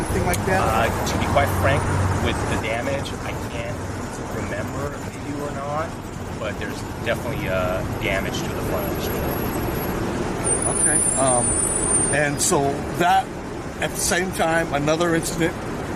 like that? To be quite frank, with the damage, I can't remember if they do or not, but there's definitely damage to the front of the store. Okay. And so that, at the same time, another incident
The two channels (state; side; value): identical; both; correlation 1.00